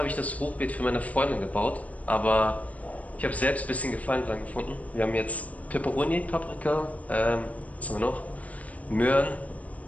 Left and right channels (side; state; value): right; late; 0.070 ms